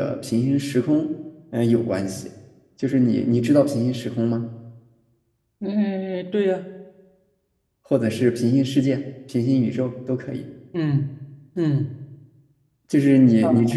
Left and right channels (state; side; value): identical; both; correlation 1.00